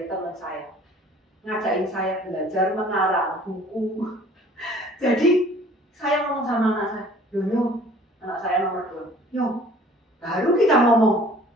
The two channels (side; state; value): both; normal; correlation 0.52